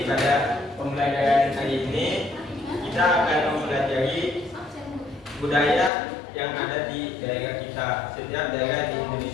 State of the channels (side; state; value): right; drops out; at 5.9 s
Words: pada pembelajaran hari ini kita akan mempelajari budaya yang ada di daerah kita. Setiap daerah di